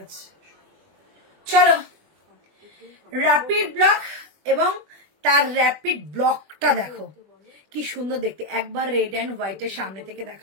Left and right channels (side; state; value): left; late; 21 ms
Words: আছে। চলো, র্যাপিড ব্লক এবং তার র্যাপিড ব্লকটা দেখো কি সুন্দর দেখতে। একবার রেড অ্যান্ড হোয়াইটের সামনে থেকে